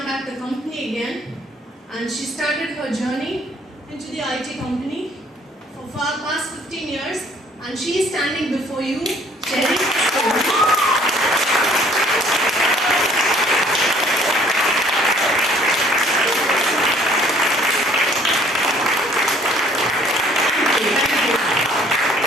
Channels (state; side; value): normal; both; correlation 0.58